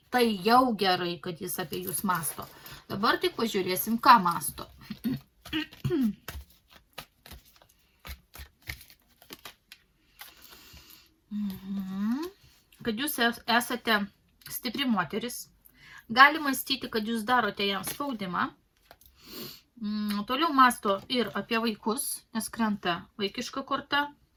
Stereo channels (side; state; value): both; identical; correlation 1.00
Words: Tai jau gerai, kad jis apie jūs masto. Dabar tik pažiūrėsim, ką masto. Kad jūs esate stipri moteris. Gali mąstyti, kad jūs darote jam spaudimą. Toliau masto ir apie vaikus, nes krenta vaikiška korta.